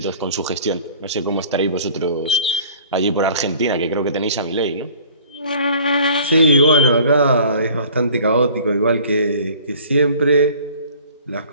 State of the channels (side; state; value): both; inverted; correlation -0.49